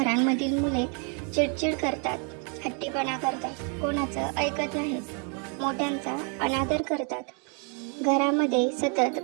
मुले चिडचिड करतात, हट्टीपणा करतात, कोणाचं ऐकत नाहीत, मोठ्यांचा अनादर करतात. घरामध्ये सतत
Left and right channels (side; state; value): left; quieter; 38.9 dB